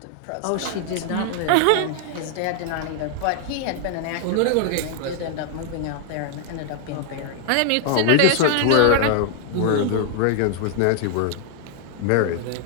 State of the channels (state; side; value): different; both; correlation 0.00